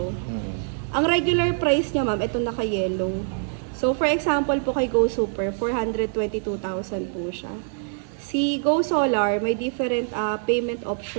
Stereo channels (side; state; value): left; silent; 57 dB below the other